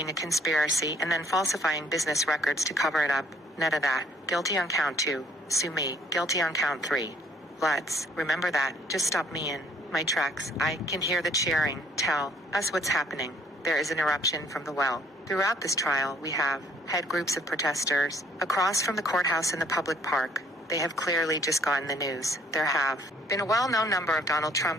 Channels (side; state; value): both; normal; correlation 0.61